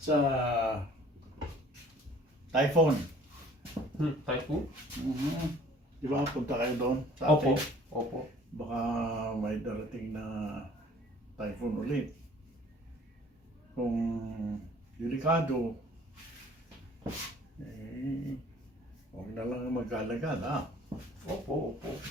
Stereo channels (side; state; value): both; normal; correlation 0.53